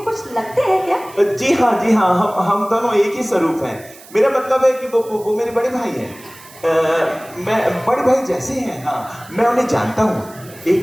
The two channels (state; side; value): noise; right; hiss, 21 dB below the sound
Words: कुछ लगते हैं क्या? जी हाँ, हम दोनों एक ही स्वरूप हैं। मेरा मतलब है कि वो मेरे बड़े भाई हैं। मैं बड़े भाई जैसे हैं। हाँ, मैं उन्हें जानता हूँ।